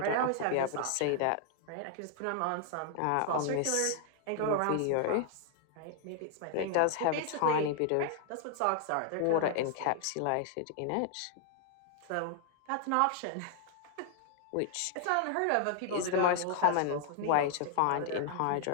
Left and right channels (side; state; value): both; different; correlation 0.00